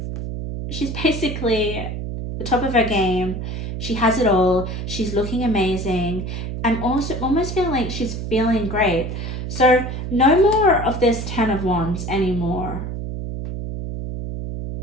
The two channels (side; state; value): right; noise; hum, 5 dB below the sound